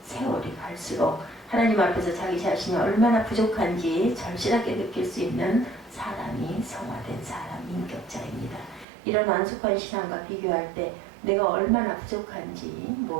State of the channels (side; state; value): left; drops out; at 8.8 s